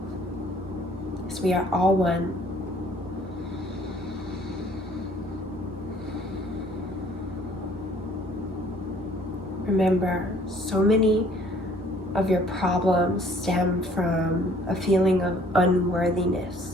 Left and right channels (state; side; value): normal; both; correlation 0.57